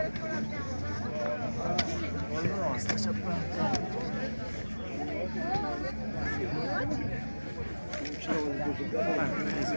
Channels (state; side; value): inverted; both; correlation -1.00